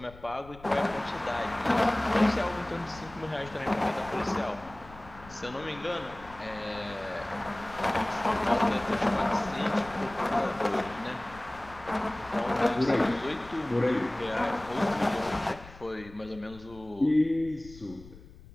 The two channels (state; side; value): noise; left; rumble, 19 dB below the sound